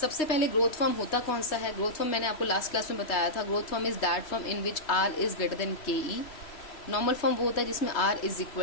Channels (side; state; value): right; late; 3.2 ms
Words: पहले ग्रोथ फर्म होता कौन सा है. ग्रोथ फर्म मैंने आपको लास्ट क्लास में बताया था. Growth firm is that firm in which R is greater than K E. Normal firm वो होता है जिसमें आर इज